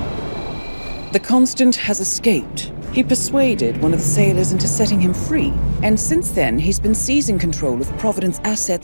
The Constant has escaped. He persuaded one of the sailors into setting him free. And since then, he's been seizing control of Providence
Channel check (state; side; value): inverted; both; correlation -1.00